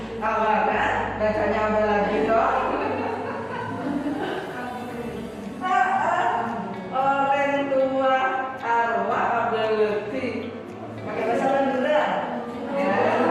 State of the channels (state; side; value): identical; both; correlation 1.00